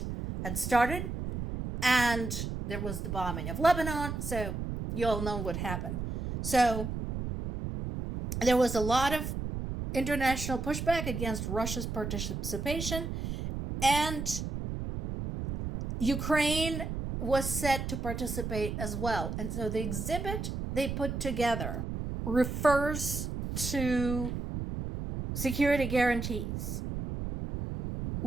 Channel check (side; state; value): right; noise; rumble, 4 dB below the sound